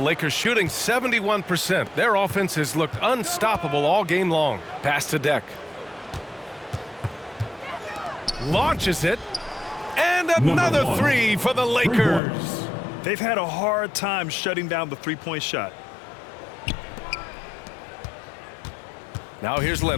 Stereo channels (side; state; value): right; drops out; at 12.2 s